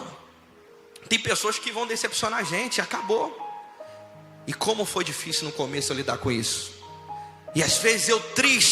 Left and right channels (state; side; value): identical; both; correlation 1.00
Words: Tem pessoas que vão decepcionar a gente, acabou. E como foi difícil no começo eu lidar com isso. E às vezes eu